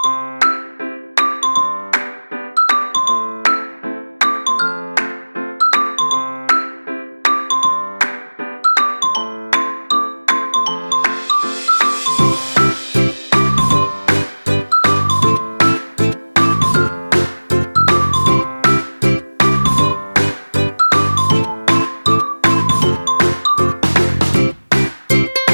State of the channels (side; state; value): both; inverted; correlation -1.00